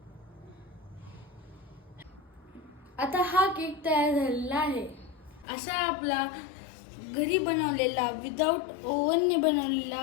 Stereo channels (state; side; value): drops out; right; at 5.5 s